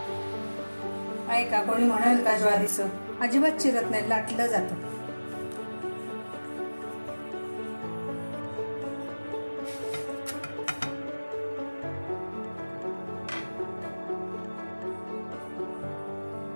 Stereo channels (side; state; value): both; inverted; correlation -1.00